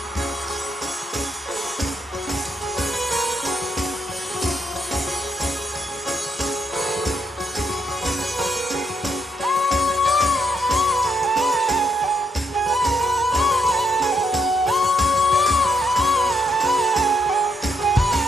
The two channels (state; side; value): normal; both; correlation 0.77